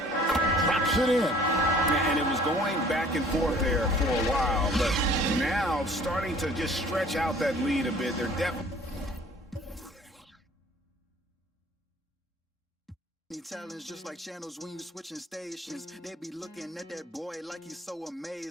it in. And it was going back and forth there for a while, but now starting to just stretch out that lead a bit. They're definitely talents just like channels when you switching stations. They be looking at that boy like he's so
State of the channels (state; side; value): normal; both; correlation 0.52